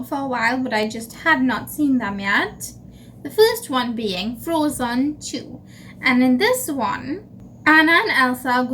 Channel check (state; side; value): identical; both; correlation 1.00